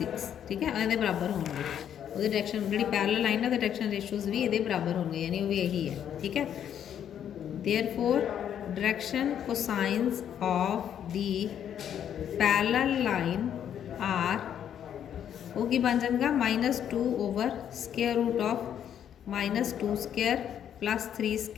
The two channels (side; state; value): right; quieter; 9.4 dB